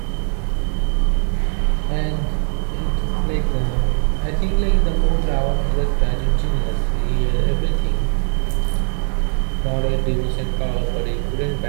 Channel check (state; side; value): silent; left; 56 dB below the other